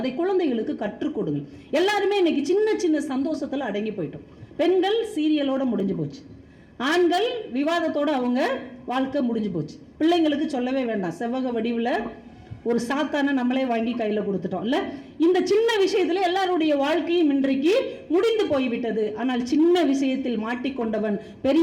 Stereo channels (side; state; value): both; identical; correlation 1.00